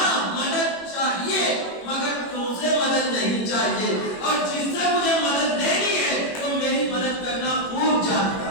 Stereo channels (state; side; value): late; right; 21 ms